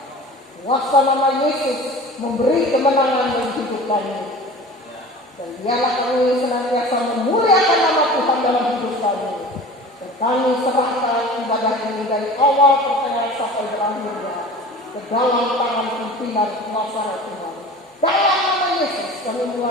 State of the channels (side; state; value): both; normal; correlation 0.39